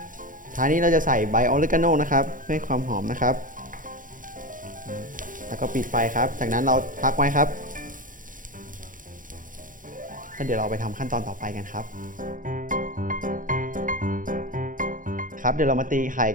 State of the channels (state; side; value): late; left; 0.39 ms